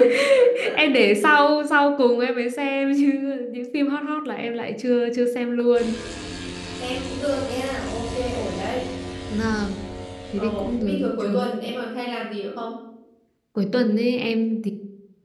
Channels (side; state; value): both; identical; correlation 1.00